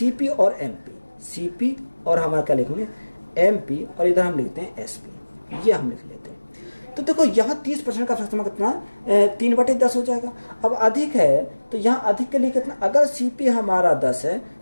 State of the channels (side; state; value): both; inverted; correlation -1.00